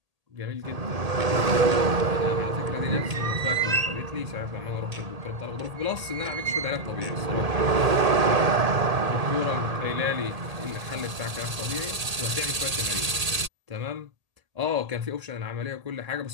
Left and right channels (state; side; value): late; left; 1.8 ms